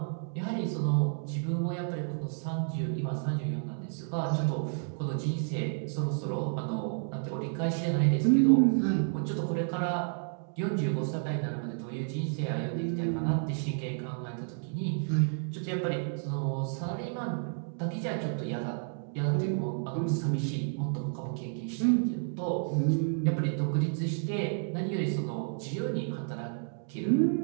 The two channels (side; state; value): left; silent; digital silence